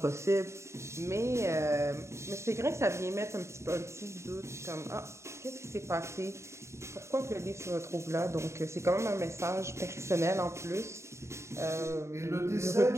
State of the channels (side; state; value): left; late; 0.14 ms